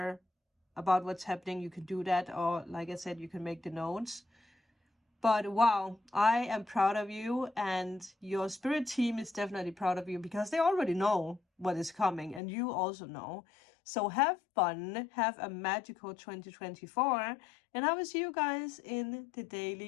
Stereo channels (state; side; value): drops out; right; at 12.4 s